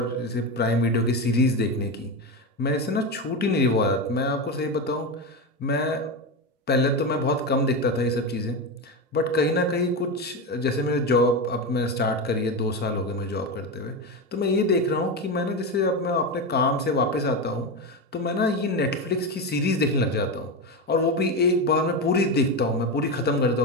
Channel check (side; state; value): both; normal; correlation 0.16